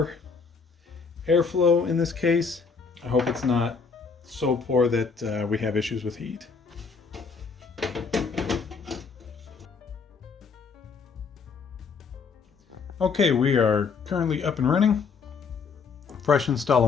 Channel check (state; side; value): quieter; right; 5.2 dB